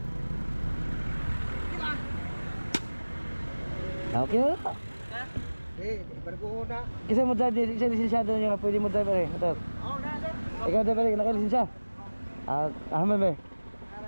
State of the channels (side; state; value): both; inverted; correlation -1.00